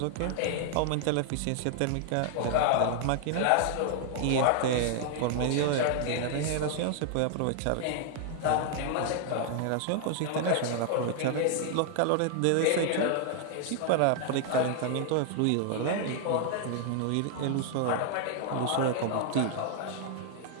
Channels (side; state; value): both; different; correlation 0.00